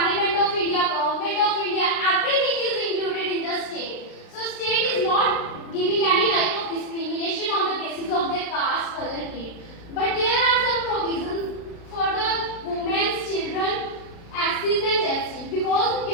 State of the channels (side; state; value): right; late; 36 ms